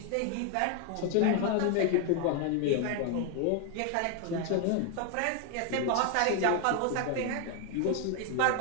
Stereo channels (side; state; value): both; different; correlation 0.01